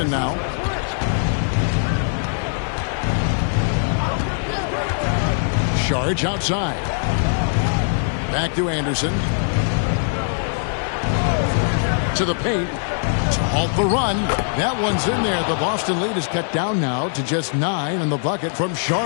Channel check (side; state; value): right; silent; digital silence